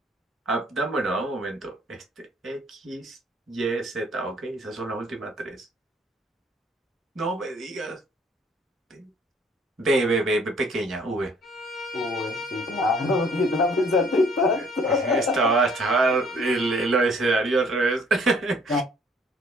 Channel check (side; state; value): both; normal; correlation 0.60